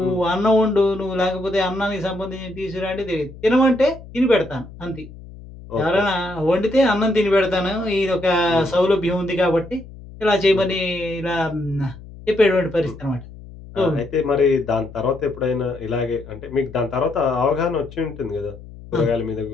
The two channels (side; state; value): left; noise; hum, 17 dB below the sound